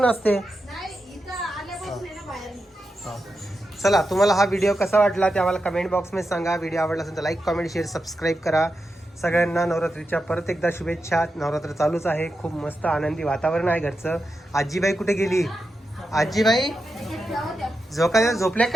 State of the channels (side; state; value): both; normal; correlation 0.88